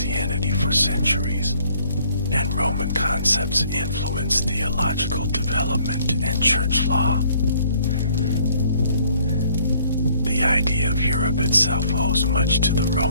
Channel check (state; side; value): inverted; both; correlation -0.62